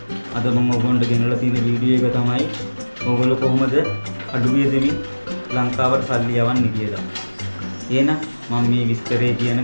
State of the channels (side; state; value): both; inverted; correlation -1.00